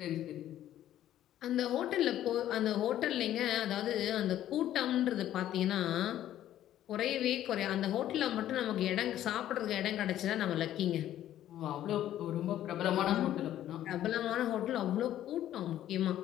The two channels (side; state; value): right; quieter; 12.3 dB